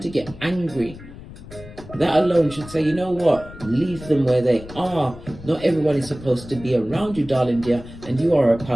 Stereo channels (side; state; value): left; noise; rumble, 16 dB below the sound